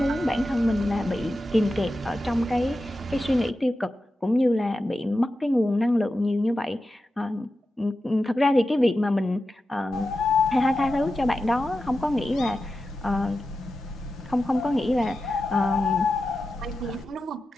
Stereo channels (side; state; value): both; normal; correlation 0.91